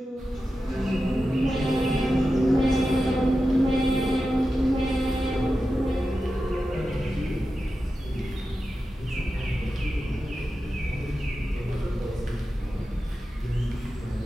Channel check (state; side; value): normal; both; correlation 0.92